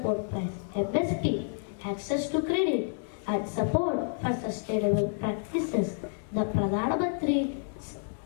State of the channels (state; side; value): silent; right; digital silence